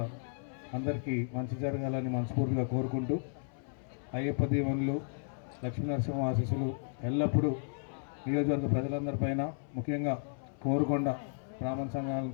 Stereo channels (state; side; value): silent; right; 55 dB below the other